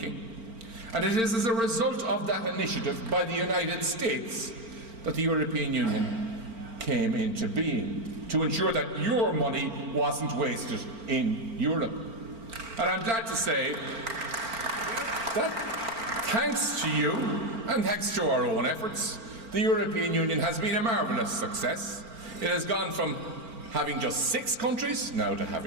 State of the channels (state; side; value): late; left; 4.4 ms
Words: And it is as a result of that initiative by the United States that the European Union came into being, to ensure that your money wasn't wasted in Europe. And I'm glad to say that thanks to you, and thanks to our own efforts, the European Union has been a marvellous success. It has gone from having just 6 countries now to